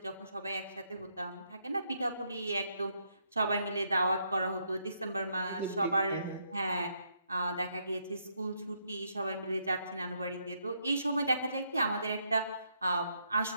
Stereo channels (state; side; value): inverted; both; correlation -0.75